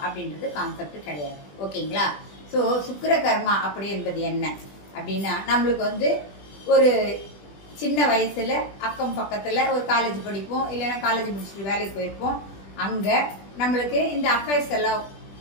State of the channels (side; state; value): right; late; 20 ms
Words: அப்படின்றது கான்செப்ட் கிடையாது. ஓகேங்களா? ஸோ சுக்கிர கர்மா அப்படி என்பது என்ன அப்படின்னா, நம்மளுக்கு ஒரு சின்ன வயசுல அக்கம் பக்கத்தில் ஒரு காலேஜ் படிப்போம், இல்லைன்னா காலேஜ் முடிச்சுட்டு வேலைக்கு போயிருப்போம். அங்கே நம்மளுக்கு இந்த அஃபேர்ஸ் எல்லாம்